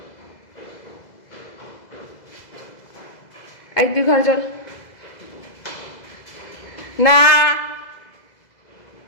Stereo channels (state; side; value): late; right; 2.0 ms